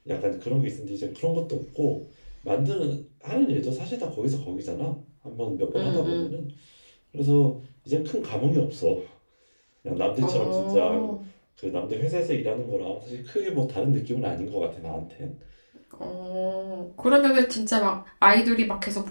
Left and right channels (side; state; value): both; inverted; correlation -1.00